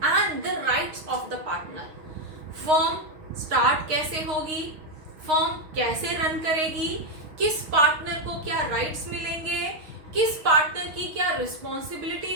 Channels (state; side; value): late; left; 6.4 ms